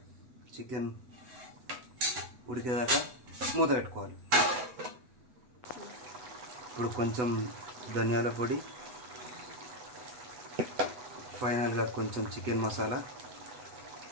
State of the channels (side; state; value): left; late; 8.0 ms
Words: చికెన్ ఉడికేదాకా మూత పెట్టుకోవాలి. ఇప్పుడు కొంచెం ధనియాల పొడి, ఫైనల్గా కొంచెం చికెన్ మసాలా